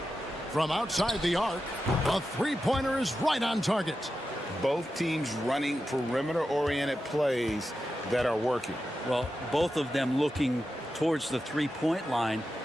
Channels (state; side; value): normal; both; correlation 0.90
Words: From outside the arc, a three-pointer is right on target. Both teams running perimeter-oriented plays that are working. Well, both of them looking towards the three-point line,